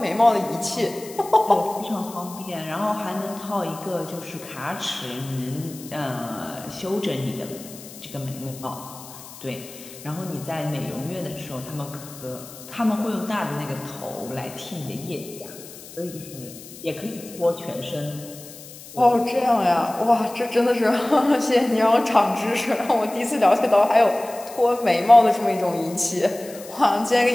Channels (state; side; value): noise; left; hiss, 16 dB below the sound